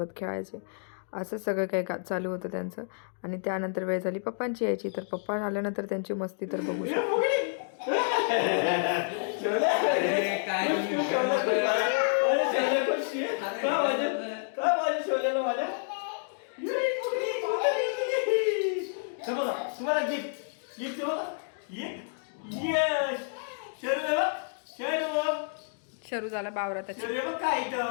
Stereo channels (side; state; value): right; silent; digital silence